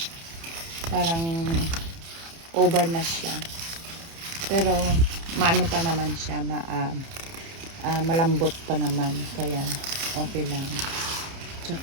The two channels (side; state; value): left; late; 30 ms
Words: parang over na siya. Pero maano pa naman siya, malambot pa naman. Kaya okay lang.